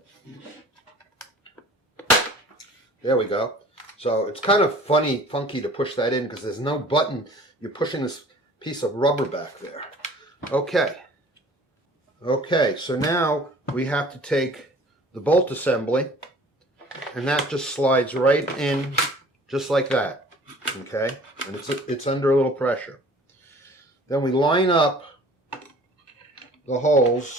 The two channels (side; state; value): both; normal; correlation 0.49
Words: There we go. So it's kind of funky to push that in because there's no button. You're pushing this piece of rubber back there. Okay. Okay, so now we have to take the bolt assembly, and that just slides right in just like that. Okay? And it's under a little pressure. Then we line up the